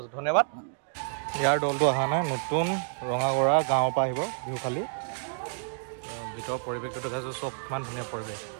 ধন্যবাদ ইয়াৰ দলটো অহা নাই নতুন ৰঙাগৰা গাঁৱৰ পৰা আহিব বিহু খালি ভিতৰৰ পৰিৱেশটো দেখাইছোঁ চব ইমান ধুনীয়া পৰিৱেশ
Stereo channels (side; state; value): left; silent; digital silence